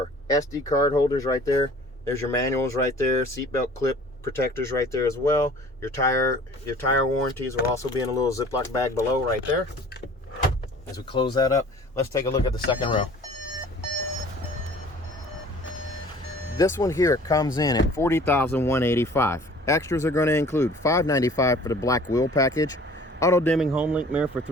SD card holders right there. There's your manuals right there, seatbelt clip protectors right there as well. Your tire warranties will also be in a little Ziploc bag below right there. As we close that up, let's take a look at the second row. This one here comes in at $40,185. Extras are going to include $595 for the black wheel package, auto dimming Homelink mirror for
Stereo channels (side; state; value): both; normal; correlation 0.48